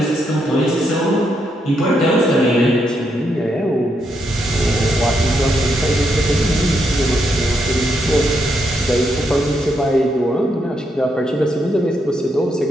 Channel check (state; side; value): normal; both; correlation 0.79